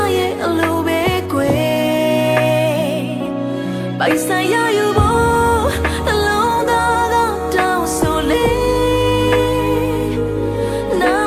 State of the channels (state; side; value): identical; both; correlation 1.00